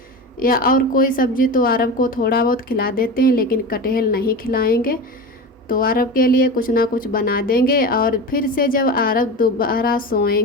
या और कोई सब्जी, तो आरब को थोड़ा बहुत खिला देते हैं, लेकिन कटहल नहीं खिलाएंगे। तो आरब के लिए कुछ ना कुछ बना देंगे और फिर से जब आरब दोबारा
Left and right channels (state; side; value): normal; both; correlation 0.27